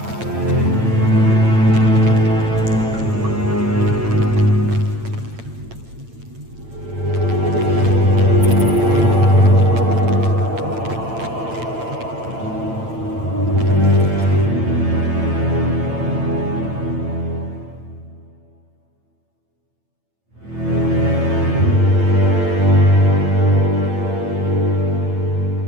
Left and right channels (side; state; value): left; late; 8.9 ms